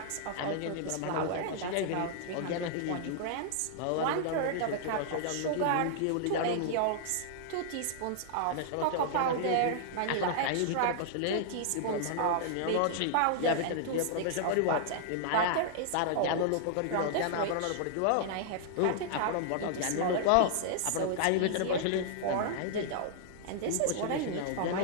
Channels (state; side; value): different; both; correlation -0.01